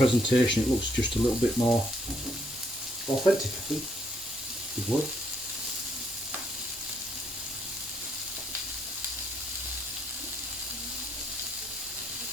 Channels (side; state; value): both; normal; correlation 0.71